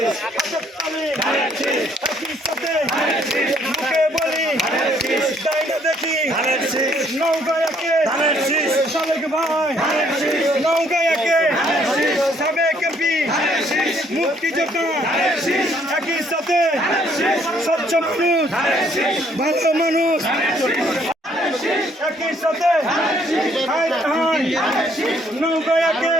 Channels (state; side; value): normal; both; correlation 0.66